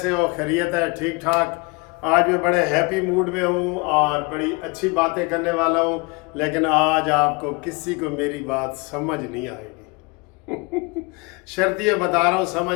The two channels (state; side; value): quieter; right; 28.1 dB